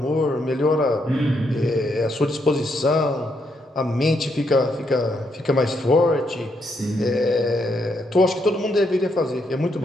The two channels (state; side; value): normal; both; correlation 0.77